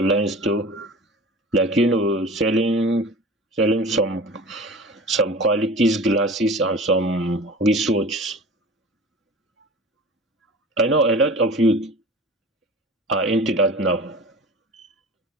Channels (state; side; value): normal; both; correlation 0.39